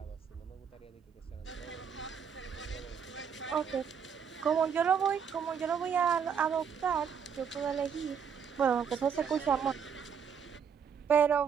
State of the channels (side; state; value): left; quieter; 7.1 dB